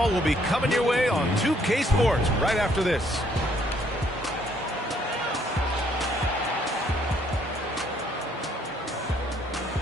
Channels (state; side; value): normal; both; correlation 0.66